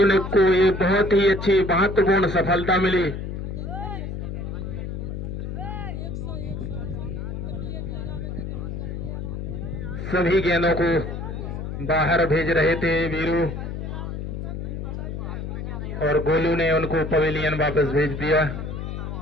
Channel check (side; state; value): left; noise; hum, 5 dB below the sound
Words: ने को ये बहुत ही अच्छी महत्वपूर्ण सफलता मिली। सभी गेंदों को बाहर भेज रहे थे वीरू, और गोलू ने उनको पवेलियन वापस भेज दिया।